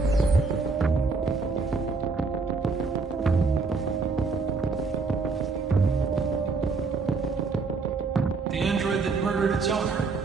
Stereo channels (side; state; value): left; quieter; 4.3 dB